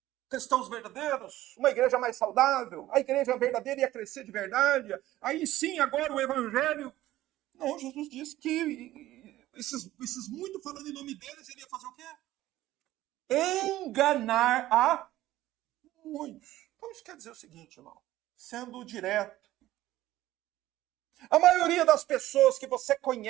Cristãos verdadeiros, uma igreja mais saudável, a igreja verdadeira ia crescer de verdade, aí sim, agora o evangelho. Não, Jesus disse que esses muito falando em nome deles, ele ia fazer o quê? Enganar a muitos. Então isso quer dizer o seguinte, irmão, sendo direto. A maioria das pessoas que você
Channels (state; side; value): quieter; left; 15.2 dB